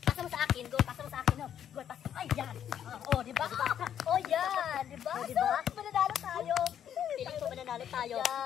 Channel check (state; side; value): quieter; right; 9.5 dB